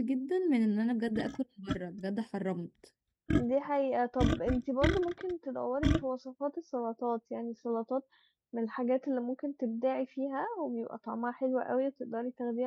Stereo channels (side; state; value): both; identical; correlation 1.00